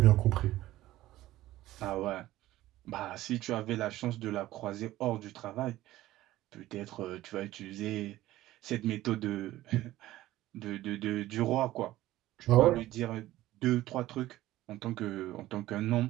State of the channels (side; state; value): left; quieter; 15.6 dB